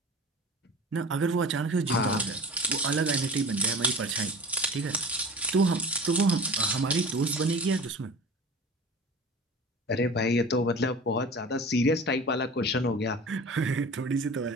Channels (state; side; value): normal; both; correlation 0.38